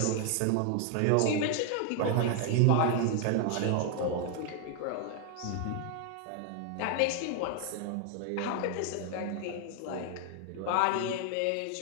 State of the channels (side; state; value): both; different; correlation 0.00